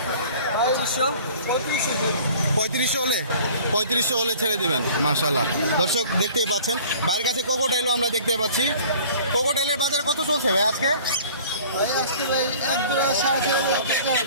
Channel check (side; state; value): both; inverted; correlation -0.48